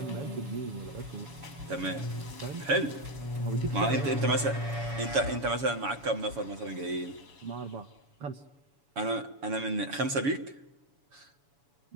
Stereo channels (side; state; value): left; late; 7.1 ms